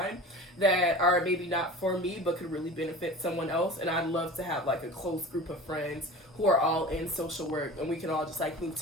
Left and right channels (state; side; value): normal; both; correlation 0.37